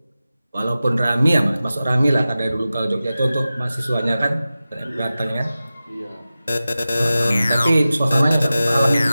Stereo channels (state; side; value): inverted; both; correlation -0.95